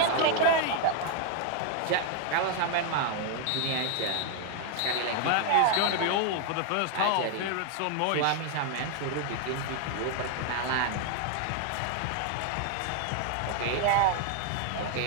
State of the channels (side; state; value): both; different; correlation 0.00